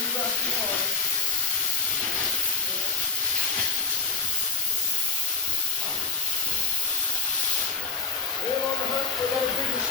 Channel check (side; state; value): right; quieter; 4.3 dB